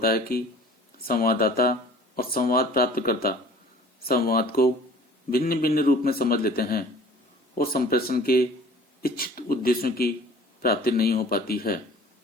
है कि संवाददाता और संवाद प्राप्तकर्ता संवाद को भिन्न भिन्न रूप में समझ लेते हैं और संप्रेषण के इच्छित उद्देश्यों की प्राप्ति नहीं हो पाती है।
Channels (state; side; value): normal; both; correlation 0.48